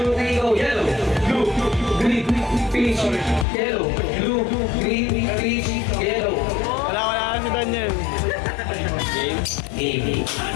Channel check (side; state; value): right; drops out; at 3.5 s